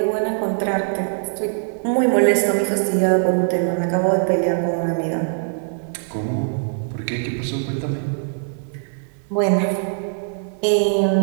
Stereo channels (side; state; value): left; silent; digital silence